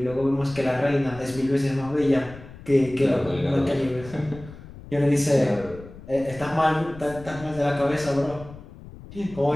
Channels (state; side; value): noise; left; rumble, 17 dB below the sound